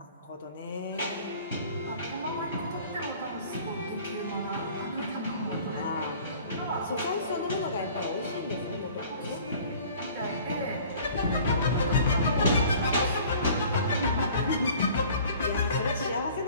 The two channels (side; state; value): both; inverted; correlation -0.49